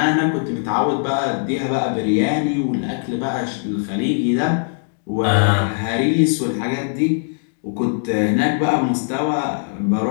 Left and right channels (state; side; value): silent; right; digital silence